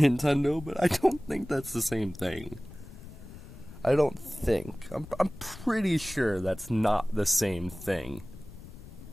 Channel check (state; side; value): noise; left; rumble, 16 dB below the sound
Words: but I don't think that's the same thing. I don't think. I'm pretty sure that's not the same thing.